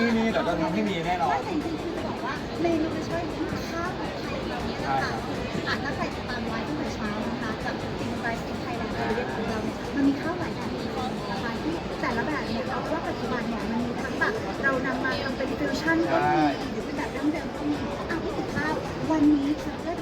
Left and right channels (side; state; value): both; identical; correlation 1.00